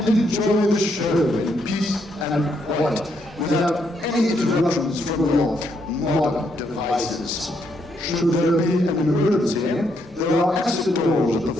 enjoy the show in peace and quiet, without any interruptions from your modern devices. Should there be an emergency, there are exit doors at the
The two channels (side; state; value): both; normal; correlation 0.75